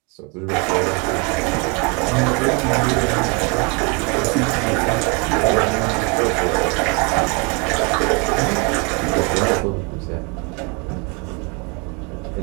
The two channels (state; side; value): quieter; left; 30.9 dB